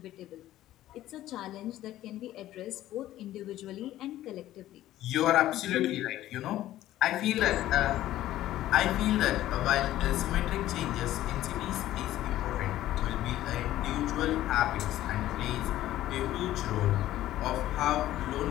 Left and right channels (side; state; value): right; quieter; 14.1 dB